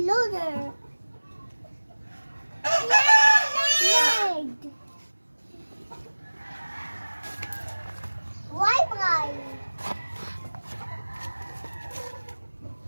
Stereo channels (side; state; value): both; inverted; correlation -1.00